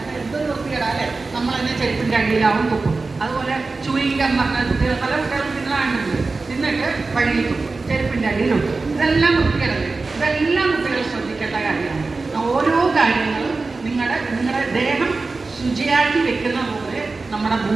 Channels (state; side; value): quieter; left; 3.8 dB